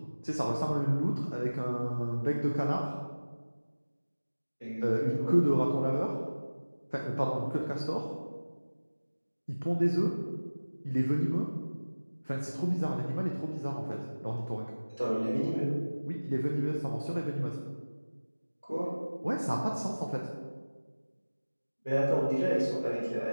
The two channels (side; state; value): both; inverted; correlation -1.00